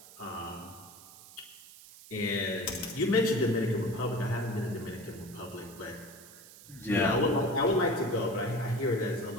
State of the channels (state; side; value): noise; right; hiss, 19 dB below the sound